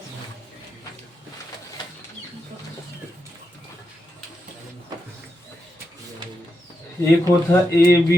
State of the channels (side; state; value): both; normal; correlation 0.85